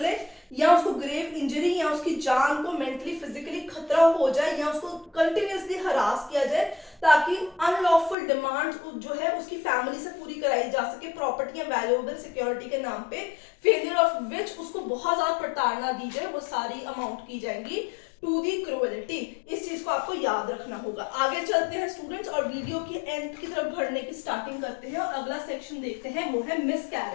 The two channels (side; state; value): right; drops out; at 8.2 s